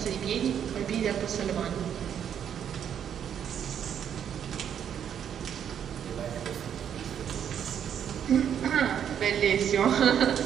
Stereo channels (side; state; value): left; quieter; 8.9 dB